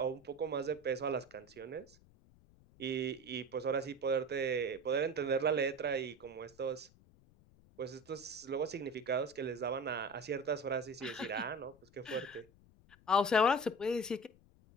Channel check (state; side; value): noise; left; rumble, 27 dB below the sound